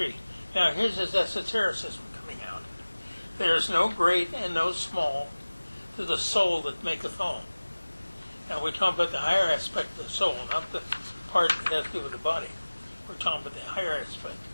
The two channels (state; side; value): inverted; both; correlation -1.00